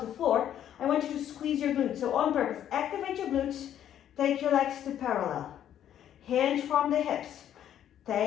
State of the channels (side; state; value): right; quieter; 10.5 dB